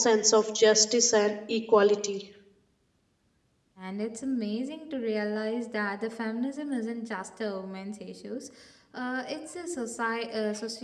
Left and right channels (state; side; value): identical; both; correlation 1.00